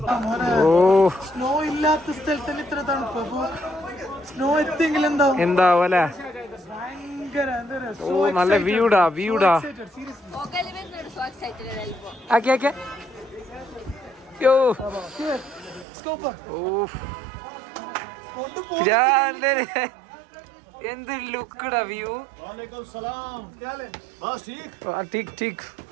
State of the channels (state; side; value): drops out; left; at 15.9 s